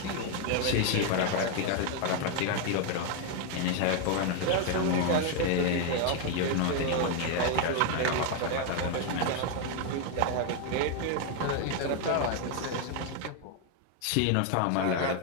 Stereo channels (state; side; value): different; both; correlation 0.01